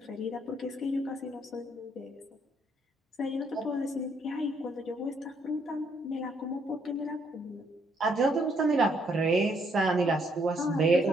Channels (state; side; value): normal; both; correlation 0.71